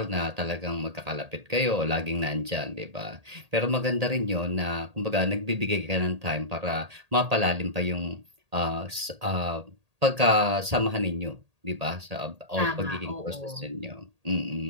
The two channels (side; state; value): left; late; 1.8 ms